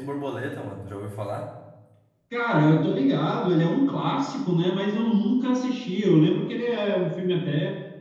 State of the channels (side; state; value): both; identical; correlation 1.00